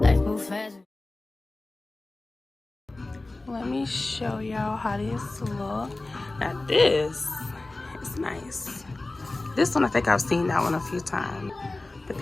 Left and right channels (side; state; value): right; quieter; 3.0 dB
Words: Life move fast. Let me show y'all how this look. Now this is nice. This one, I think I've seen that one a few times, but